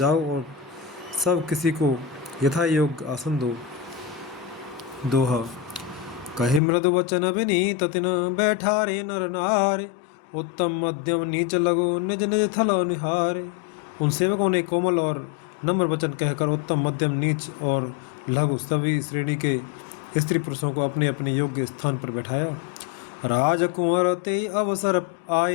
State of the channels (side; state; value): right; drops out; at 6.6 s